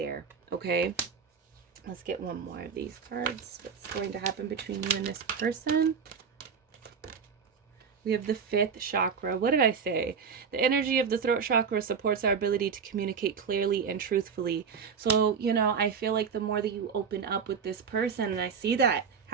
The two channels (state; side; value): quieter; left; 6.3 dB